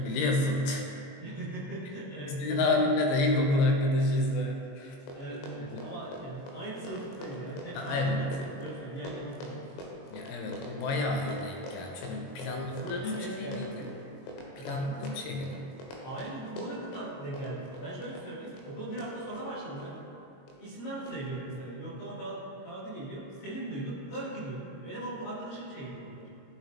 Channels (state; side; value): late; right; 22 ms